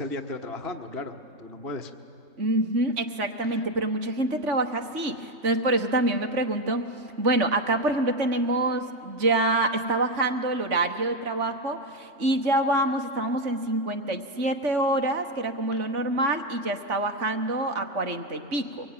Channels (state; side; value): late; left; 3.5 ms